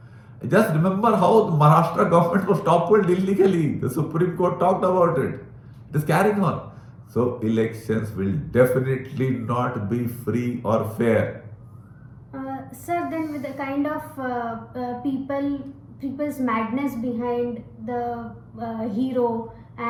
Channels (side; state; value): both; identical; correlation 1.00